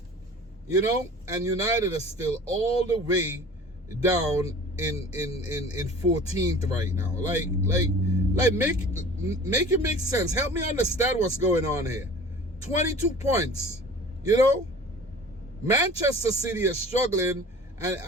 and United are still all the way down in 14th right now. Make it make sense. Help me understand what's going on here. 22 points, Manchester City is struggling,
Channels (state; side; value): normal; both; correlation 0.43